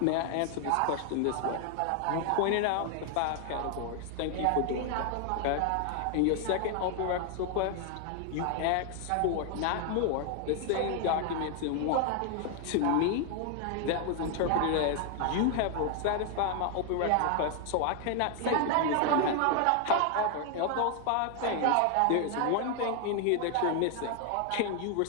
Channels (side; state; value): both; different; correlation 0.00